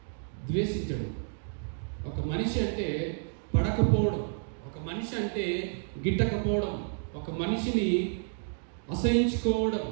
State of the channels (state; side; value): silent; left; digital silence